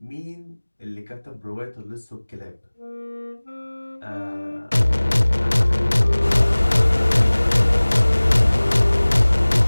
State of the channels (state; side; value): inverted; both; correlation -1.00